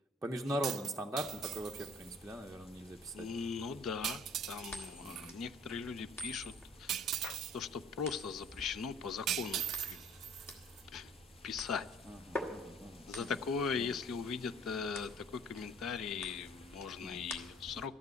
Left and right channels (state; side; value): normal; both; correlation 0.54